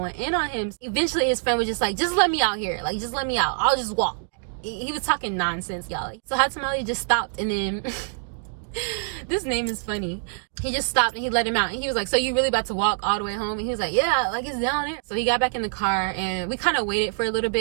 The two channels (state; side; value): silent; left; digital silence